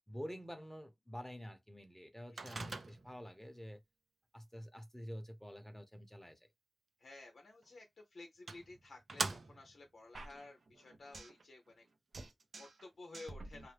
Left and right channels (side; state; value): both; normal; correlation 0.94